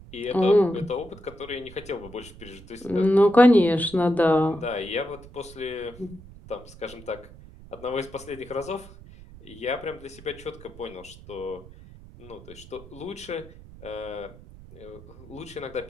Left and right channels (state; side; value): noise; right; rumble, 19 dB below the sound